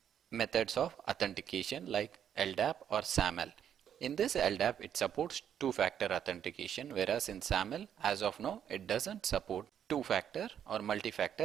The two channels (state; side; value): quieter; left; 9.2 dB